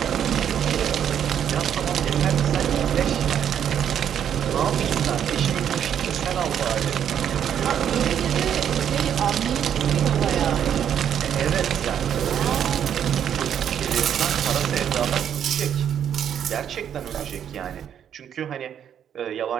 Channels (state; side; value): quieter; left; 9.1 dB